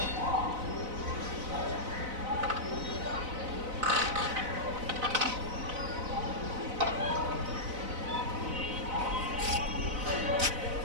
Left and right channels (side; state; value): left; late; 4.0 ms